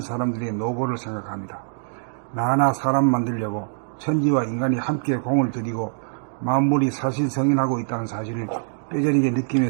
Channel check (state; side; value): silent; left; digital silence